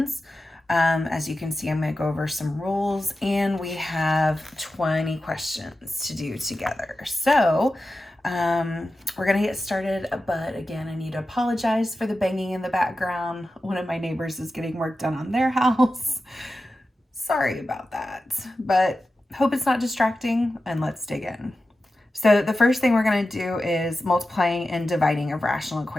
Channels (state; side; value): normal; both; correlation 0.93